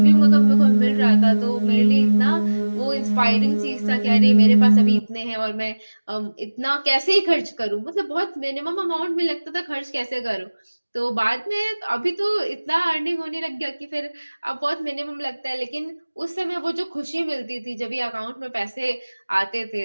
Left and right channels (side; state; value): both; inverted; correlation -1.00